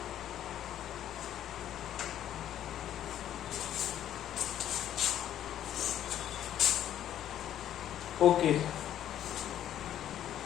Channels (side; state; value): right; quieter; 11.2 dB